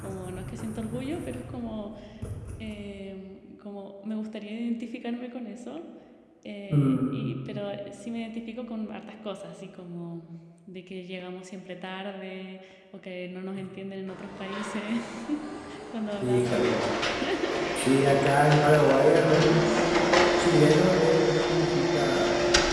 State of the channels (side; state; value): both; identical; correlation 1.00